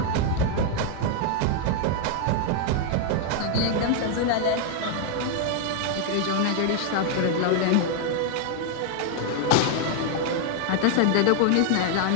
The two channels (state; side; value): different; both; correlation 0.00